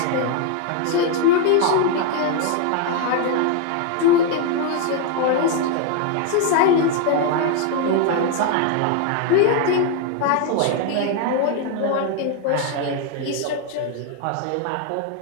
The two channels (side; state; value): both; different; correlation 0.00